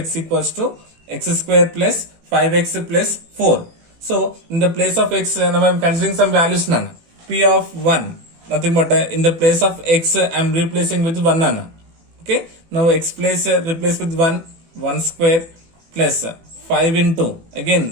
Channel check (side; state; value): left; late; 18 ms